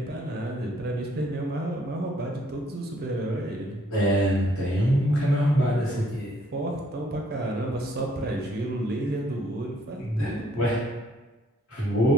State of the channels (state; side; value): normal; both; correlation 0.66